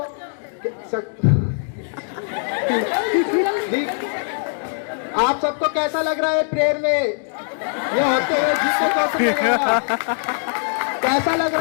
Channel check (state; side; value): silent; right; 65 dB below the other